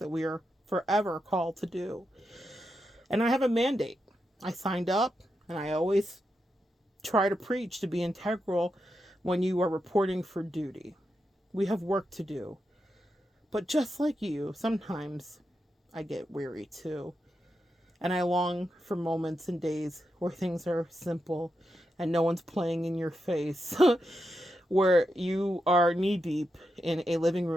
we are forever called to do. And I have a mandate. I signed up, and I always try to preach to be integral when you are reporting for duty. We have work to do. But just like you, sometimes I get weary too. And I long for moments and days where things are simple and no one's playing in your face, where you are knee deep in a living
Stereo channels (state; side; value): normal; both; correlation 0.86